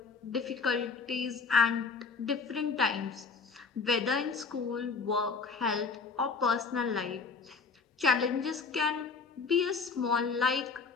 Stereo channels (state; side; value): quieter; right; 4.9 dB